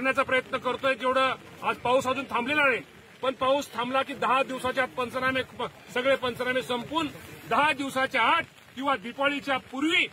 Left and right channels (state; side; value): identical; both; correlation 1.00